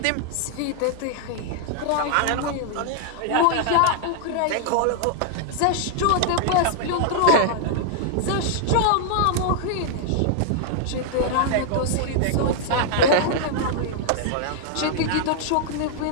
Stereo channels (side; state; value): both; different; correlation -0.01